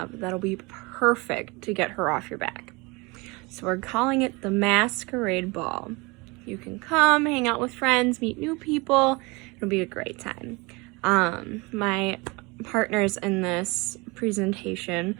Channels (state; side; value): quieter; left; 26.1 dB